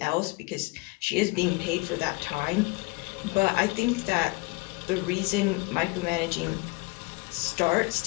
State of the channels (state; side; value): quieter; right; 24.7 dB